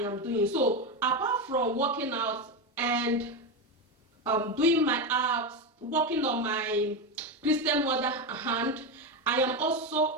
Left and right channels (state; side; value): normal; both; correlation 0.14